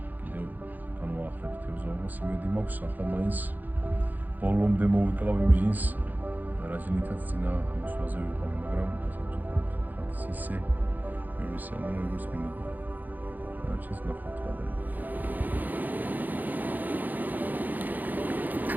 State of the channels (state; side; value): late; left; 0.084 ms